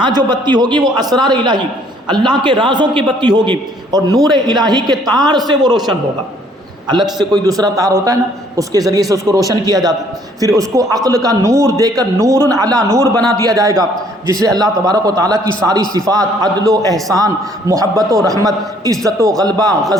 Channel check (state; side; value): normal; both; correlation 0.62